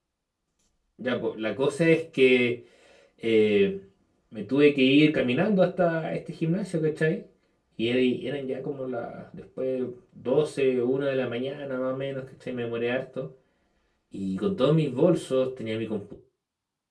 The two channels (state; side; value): identical; both; correlation 1.00